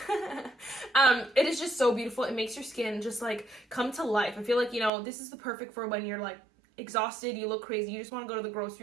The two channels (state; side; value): drops out; left; at 4.9 s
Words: It is just so beautiful. It makes your skin just like come to life. I feel like, you know, this is the perfect for when you're like exhausted, you look crazy, you just want to go to the